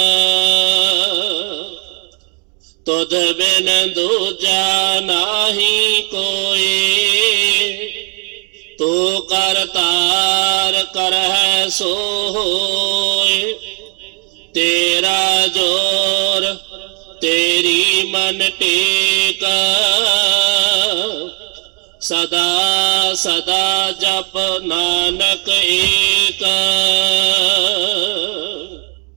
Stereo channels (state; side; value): quieter; left; 37.2 dB